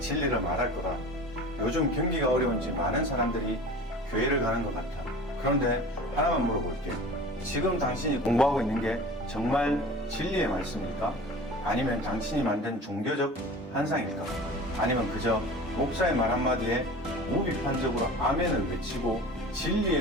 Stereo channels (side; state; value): both; normal; correlation 0.39